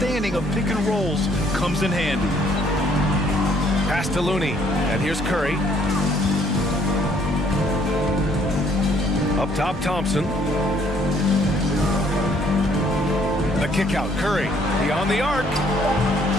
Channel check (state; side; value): normal; both; correlation 0.64